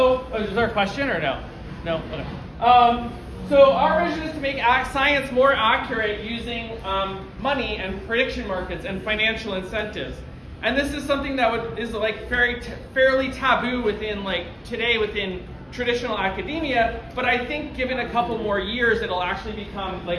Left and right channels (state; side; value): identical; both; correlation 1.00